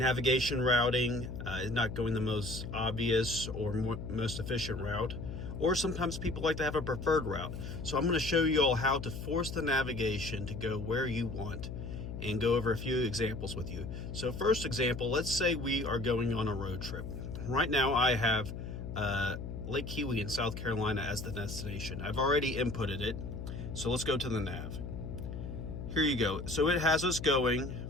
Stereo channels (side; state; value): left; noise; hum, 7 dB below the sound